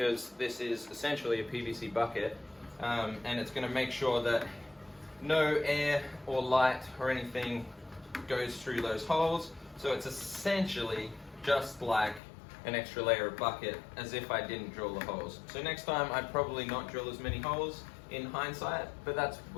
this is essentially a PVC bucket, and it's gonna make sure that no air or light or anything goes through those holes. So it's essentially just like an extra layer of bucket, as if I didn't drill the holes. So next time I'd probably not drill as many holes in hindsight, but that's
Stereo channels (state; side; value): drops out; right; at 12.2 s